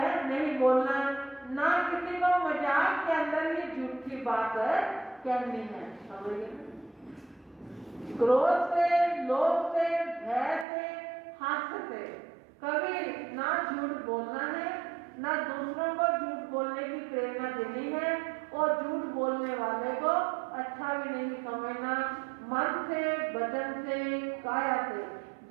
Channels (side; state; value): left; drops out; at 10.7 s